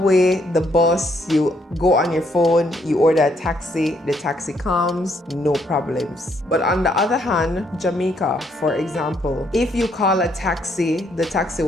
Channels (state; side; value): normal; both; correlation 0.71